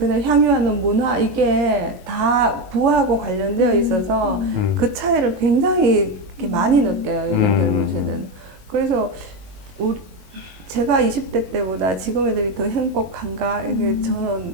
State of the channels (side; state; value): left; late; 22 ms